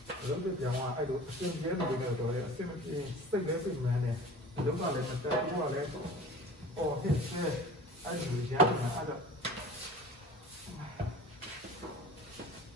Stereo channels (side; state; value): both; normal; correlation 0.40